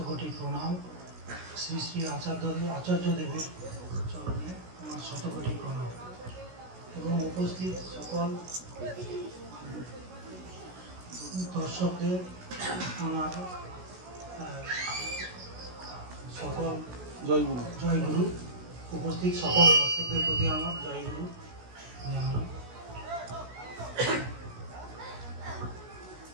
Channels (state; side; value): late; left; 16 ms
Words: প্রণাম, শ্রী শ্রী আচার্যদেবের চরণে আমার শতকোটি প্রণাম এবং উপস্থিত সকল দর্শকদের আমার সকল জয়গুরু। উপস্থিত সকল দর্শকদের প্রতি আমার জয়গুরু জানাই।